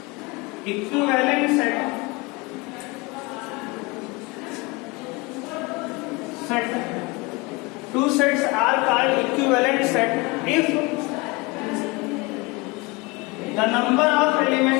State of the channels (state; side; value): quieter; right; 25.4 dB